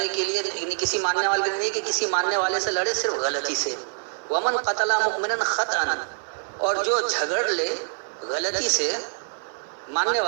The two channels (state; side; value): silent; left; digital silence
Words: کے لیے، یعنی کسی ماننے والے کے لیے نہیں کہ کسی ماننے والے سے لڑے صرف غلطی سے. ومن قتل مؤمنا خطأ، اور جو جھگڑ لے غلطی سے ماننے